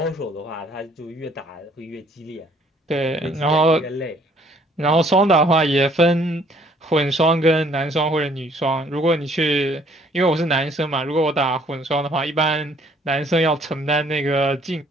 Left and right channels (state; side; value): normal; both; correlation 0.61